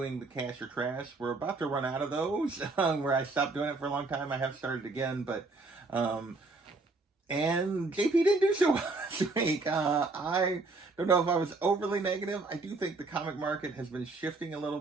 the cash or trash. We're about to run out of those, where I stopped doing it for a long time. I have started again, but and JP didn't do so well this week. I don't know if I was overly negative. I do think the comic market has been shifting a little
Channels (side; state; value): left; quieter; 3.5 dB